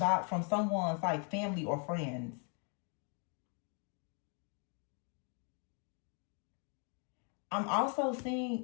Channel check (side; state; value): right; quieter; 39.7 dB